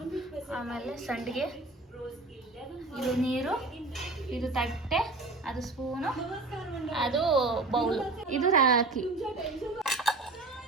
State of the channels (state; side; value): quieter; left; 3.3 dB